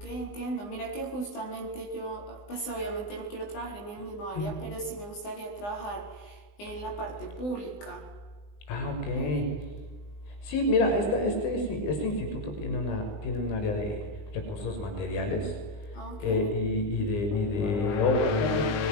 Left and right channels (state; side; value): late; right; 20 ms